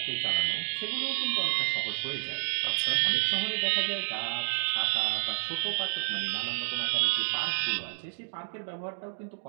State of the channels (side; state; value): left; silent; 58 dB below the other